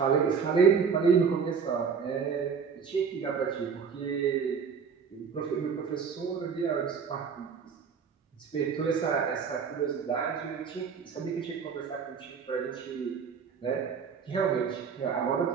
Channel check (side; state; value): left; quieter; 6.3 dB